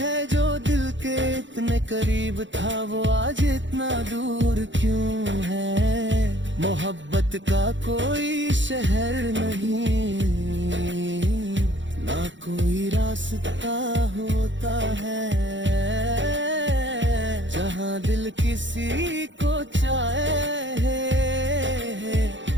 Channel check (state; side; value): late; left; 0.54 ms